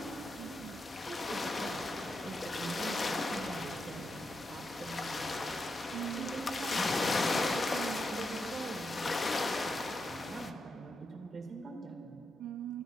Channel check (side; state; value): both; normal; correlation 0.85